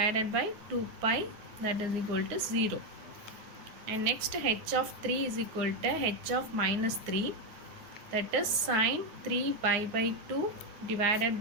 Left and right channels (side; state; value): left; late; 9.2 ms